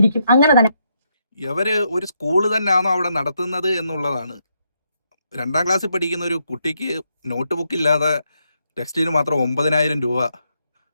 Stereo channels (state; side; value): inverted; both; correlation -0.79